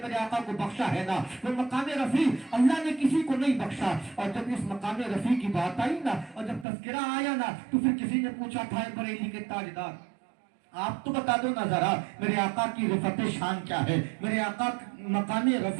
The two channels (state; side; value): drops out; left; at 6.7 s